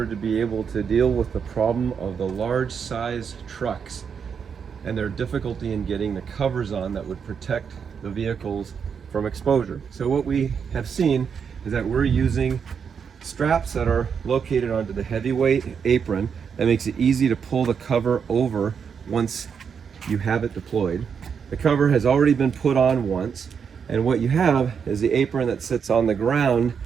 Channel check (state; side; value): quieter; left; 6.7 dB